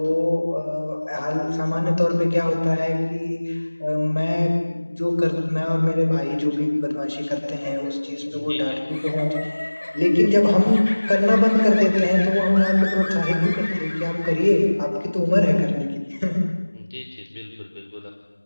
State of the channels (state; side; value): inverted; both; correlation -1.00